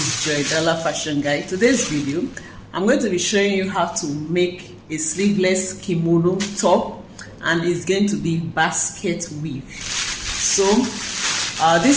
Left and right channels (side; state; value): both; identical; correlation 1.00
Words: Joy Dollar Fashion Guide. Today's video, I'm going to be showing you how to make a sleeveless kimono top, and it's going to be basket weave. So